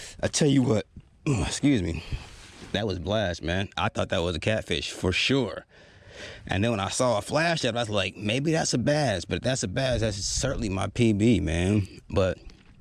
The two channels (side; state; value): both; identical; correlation 1.00